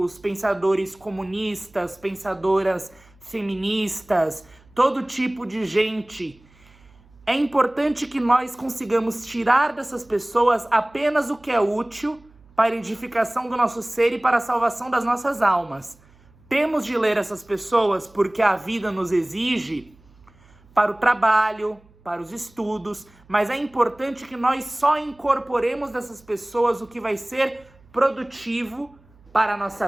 pensadores comunistas, pensadoras feministas, todo tipo de gente, é importante que nós consigamos tirar dessas pessoas apenas o que é útil para a edificação do nosso ser e para a salvação das nossas almas. Temos de ler essas pessoas porque a vida nos exige para o trabalho, para os estudos, mas é importante que nós só incorporemos dessas pessoas o que vai ser produtivo para a nossa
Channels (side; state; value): right; noise; hum, 28 dB below the sound